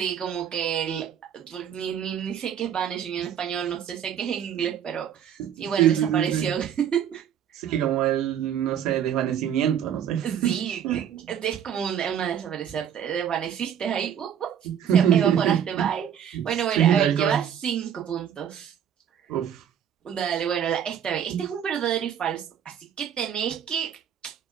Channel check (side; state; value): left; quieter; 9.1 dB